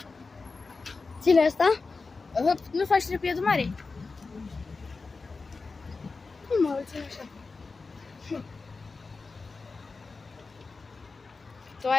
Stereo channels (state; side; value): quieter; right; 4.1 dB